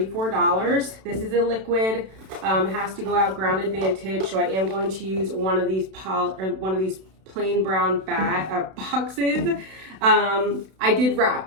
This is a liquid. It has to go out ground advantage, so I am going to use one of these plain brown boxes. I did wrap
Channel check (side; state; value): left; late; 32 ms